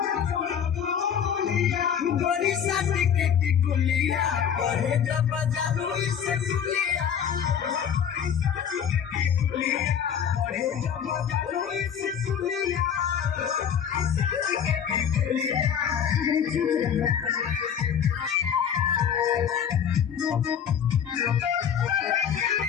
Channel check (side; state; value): right; quieter; 8.1 dB